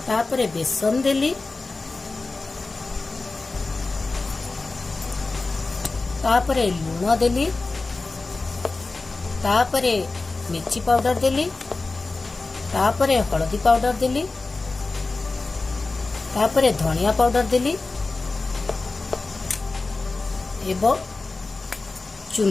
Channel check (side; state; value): right; quieter; 3.6 dB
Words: तापरे बेसन देली। तापरे लूण देली। तापरे मिर्ची पाउडर देली। तापरे हलदी पाउडर देली। तापरे धनिया पाउडर देली एवं